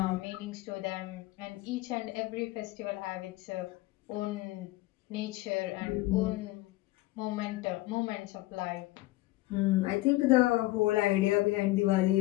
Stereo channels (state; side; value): quieter; right; 18.8 dB